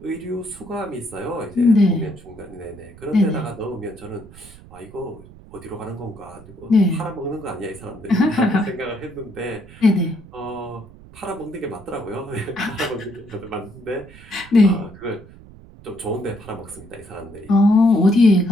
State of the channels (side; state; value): right; noise; rumble, 20 dB below the sound